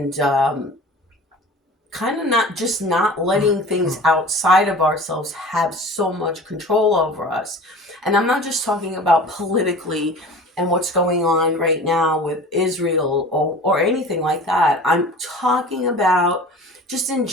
kind of not letting things outside of ourselves have so much control over us. And I'm not just talking about politically and what's going on right now with Israel or anything like that. I'm talking about just in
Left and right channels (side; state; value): both; normal; correlation 0.40